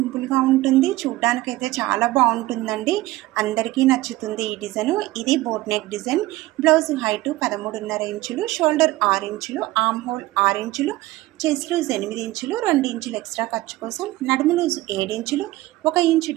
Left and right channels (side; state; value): left; quieter; 18.1 dB